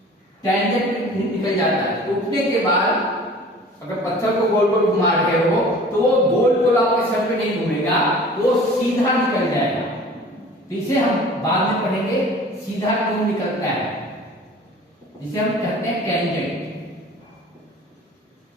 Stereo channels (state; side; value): normal; both; correlation 0.45